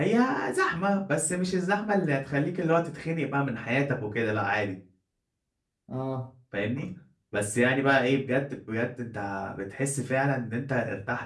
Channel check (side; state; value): both; identical; correlation 1.00